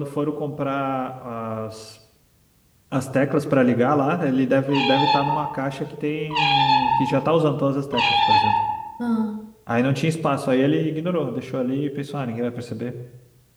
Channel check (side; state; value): both; identical; correlation 1.00